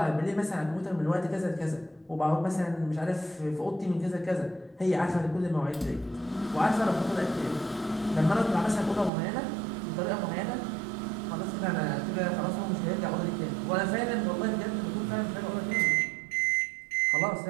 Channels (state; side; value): drops out; left; at 9.1 s